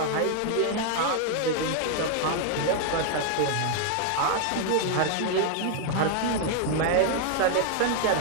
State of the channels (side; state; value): both; different; correlation 0.00